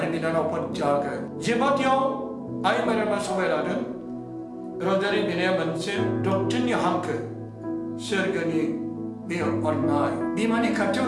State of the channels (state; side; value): identical; both; correlation 1.00